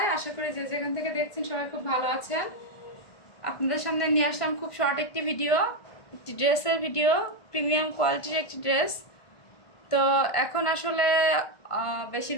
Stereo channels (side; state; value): right; late; 1.5 ms